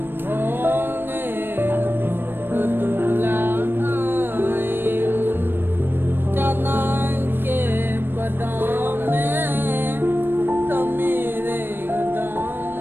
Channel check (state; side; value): late; left; 0.098 ms